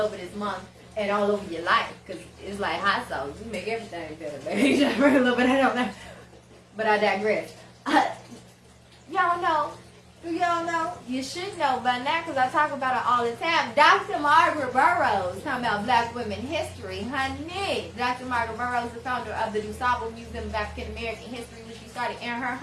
this month and all over your life. Because it's like hot sauce. You make everything better, baby. Just bring a little bit, I don't know. But I digress. Y'all know. Do y'all know? You should know by now because I talk about it all the time. Dr. Margaret Burroughs, talking about black women history. Honey, Dr. Margaret Burroughs, the founder of the DuSable Museum of African American History, which she started in her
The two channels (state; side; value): identical; both; correlation 1.00